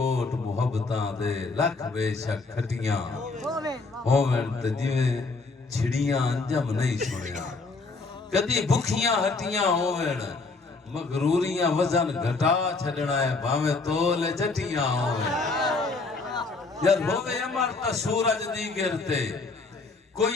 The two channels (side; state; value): right; quieter; 3.8 dB